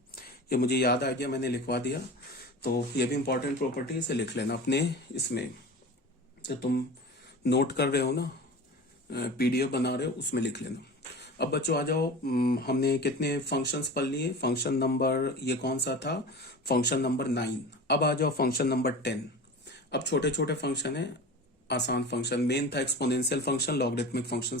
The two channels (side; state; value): both; normal; correlation 0.34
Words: ये मुझे याद आ गया, मैंने लिखवा दिया, तो ये भी इंपॉर्टेंट प्रॉपर्टी, इसे लिख लेना अपने इसमें, तो तुम नोट कर रहे हो ना, पीडीएफ बना रहे हो उसमें लिख लेना। अब बच्चों आ जाओ, हमने कितने फंक्शंस पढ़ लिए, फंक्शन नंबर ये कौन सा था, फंक्शन नंबर 9। अब आ जाओ फंक्शन नंबर 10। अब छोटे छोटे फंक्शन है, आसान फंक्शन, मेन था एक्सपोनेंशियल फंक्शन, लॉगरिथमिक फंक्शन